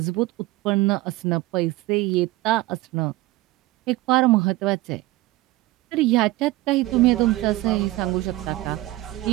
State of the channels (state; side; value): quieter; left; 18.4 dB